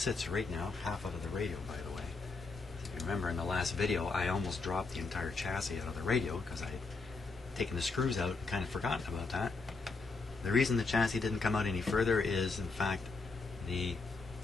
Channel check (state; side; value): quieter; right; 4.1 dB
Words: right now, half out of the radio, by the way. If you remember in the last video, I almost dropped the entire chassis out of the radio because I had taken the screws out and kind of forgotten about that. The reason the chassis didn't come out any further is, in fact, the